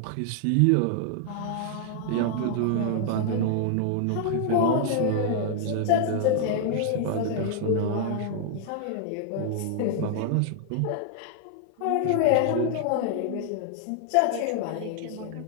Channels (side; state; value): both; different; correlation 0.00